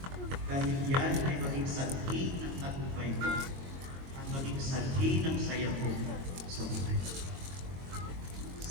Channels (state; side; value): late; left; 22 ms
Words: Dahil yan ay maging sanhi ng tagumpay mo. At maging sanhi ng saya mo sa buhay.